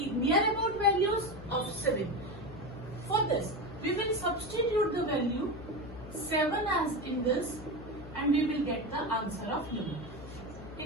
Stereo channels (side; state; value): left; noise; hum, 13 dB below the sound